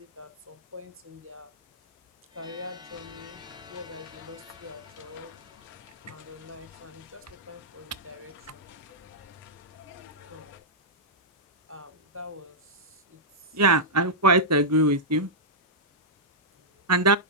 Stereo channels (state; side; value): normal; both; correlation -0.09